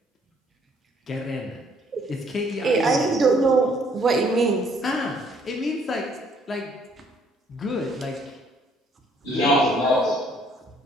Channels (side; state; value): both; normal; correlation 0.64